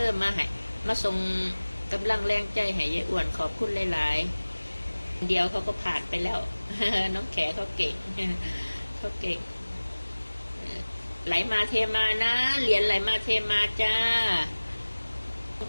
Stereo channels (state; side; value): inverted; both; correlation -1.00